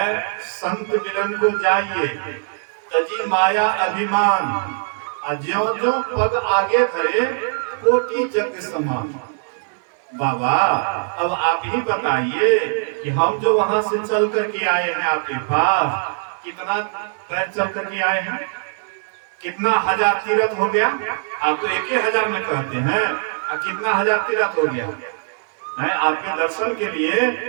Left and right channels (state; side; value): silent; left; digital silence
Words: संत मिलन को जाइए तजी माया अभिमान, ज्यों ज्यों पग आगे धरे कोटि जग समान। बाबा अब आप ही बताइए कि हम जो वहां से चल करके आए हैं आपके पास, कितना पैर चल करके आए हैं, कितना 1000 तीर्थ हो गया? आप तो 1000 में कहते हैं, कितना 1000 तीर्थ हो गया? है, आपके दर्शन के लिए